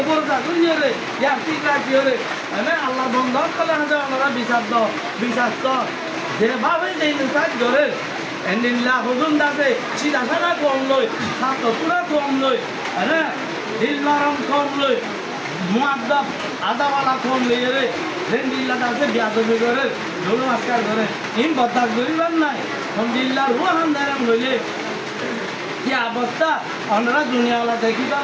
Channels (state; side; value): identical; both; correlation 1.00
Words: উপর যা দুনিয়া রে ইয়া ঠিক রাখি রে মানে আল্লাহ বন্ধক করলে আছে ওনারা বিশ্বাস তো যেভাবে যেই নিকাজ ধরে এন্ডিল্লা হুজুন দাসে সিধা সাদা কম লই ছাত্র পুরা কম লই হ্যাঁ দিল নরম কম লই মুআদ্দাব আদাওয়ালা কম লই রে এন্ডিল্লা দাসে বিয়াদবি করে ধরুন আজকাল করে ইন বদাক করিবার নাই আলহামদুলিল্লাহ রুহান দারাম লইলে কি অবস্থা আমরা দুনিয়াওয়ালা দেখিবা